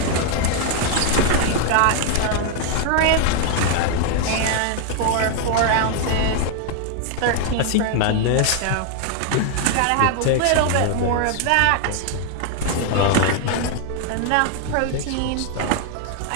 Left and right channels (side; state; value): both; different; correlation 0.00